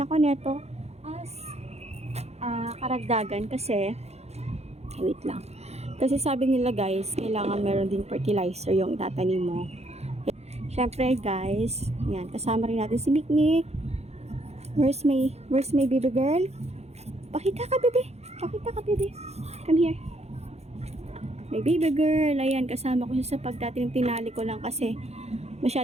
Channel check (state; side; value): late; left; 0.31 ms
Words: neto as karagdagan kasi, wait lang. Kasi sabi nila guys, kailangan meron din fertilizer yung itatanim mo. Syempre guys, yan, kasama rin natin si Mikmik. Where's my baby girl? Pakita ka, bebe. Pakita ka, bebe. Come here. My baby girl. Ayan, kasama ko siya sa pagtatanim. Tinali ko lang kasi